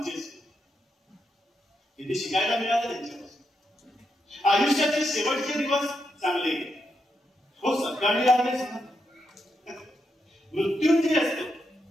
इथे शिकायला मिळालं त्यांच्यापासून. आयुष्याचे शेवटचे दिवस चांगले हो. सकाळी आले मृत्युंजय असतो,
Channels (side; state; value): both; normal; correlation 0.82